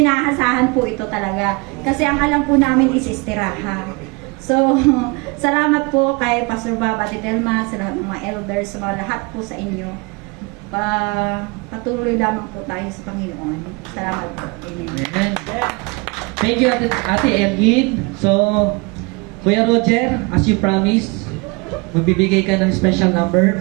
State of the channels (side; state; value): left; quieter; 28.1 dB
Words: inaasahan po ito talaga. Kasi ang alam po namin is istiraha. So, salamat po kay Pastor Bob at Delma, sa lahat ng mga elders, sa mga lahat po sa inyo. Patuloy lamang po tayo sa Panginoon. Salamat po. Amen. Amen. Thank you, Ate Elgin. So, Kuya Roger, as you promised, magbibigay ka ng special number